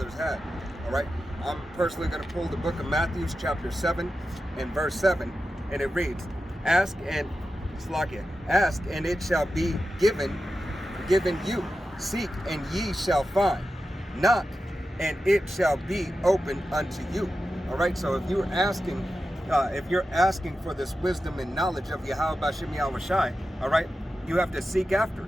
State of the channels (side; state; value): both; normal; correlation 0.92